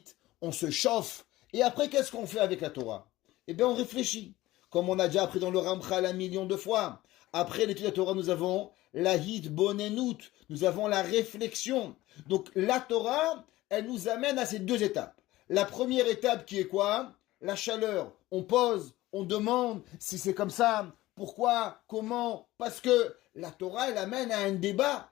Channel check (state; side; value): quieter; right; 17.2 dB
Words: on se chauffe, et après, qu'est-ce qu'on fait avec la Torah? Eh bien, on réfléchit. Comme on a déjà appris dans le Ramchal 1 million de fois. Après l'étude de la Torah, nous avons la hitbonenut, nous avons la réflexion. Donc, la Torah, elle nous amène à ces deux étapes. La première étape qui est quoi? La chaleur. On pose, on demande si c'est comme ça, pourquoi, comment, parce que la Torah, elle amène à un débat.